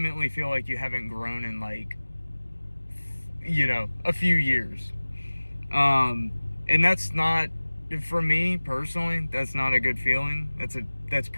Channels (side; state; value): both; inverted; correlation -1.00